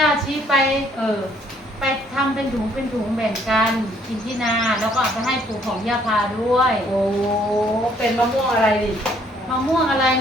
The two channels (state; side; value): normal; both; correlation 0.64